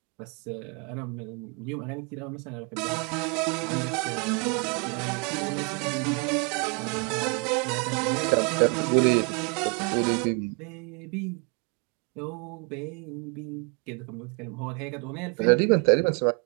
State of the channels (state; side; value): quieter; left; 34.2 dB